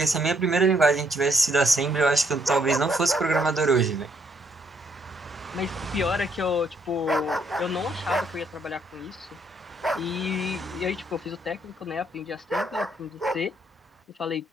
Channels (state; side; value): normal; both; correlation 0.70